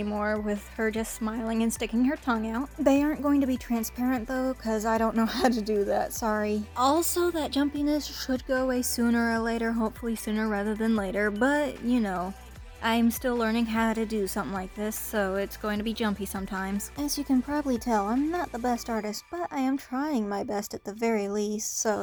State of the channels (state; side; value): identical; both; correlation 1.00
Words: with her just smiling and sticking her tongue out. They aren't going to be transparent though, because I don't know how to do that, sorry. Also, that jumpiness should go away sooner or later, hopefully sooner rather than later, but you know. I'm still learning how to do something like this, so it's going to be jumpy sometimes. As you can probably tell, I'm not the best artist, but I am trying my best at the very least,